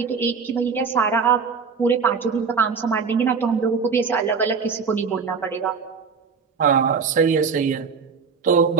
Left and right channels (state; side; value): quieter; left; 5.6 dB